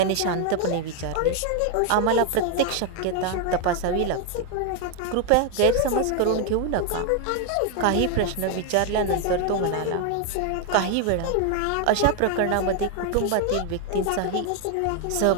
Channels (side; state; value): both; different; correlation 0.01